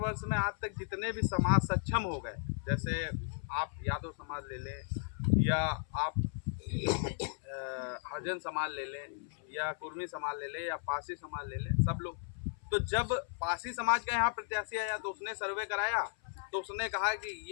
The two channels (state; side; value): silent; right; 54 dB below the other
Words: में आज तक जितने भी समाज सक्षम हो गए, जैसे आप यादव समाज ले लें या आप हरिजन समाज ले लें या कुर्मी समाज ले लें या पासी समाज ले लें, सब लोग, तो जब पासी समाज का यहाँ प्रत्याशी आया तो उसने सर्वे कराया तो उसने कहा कि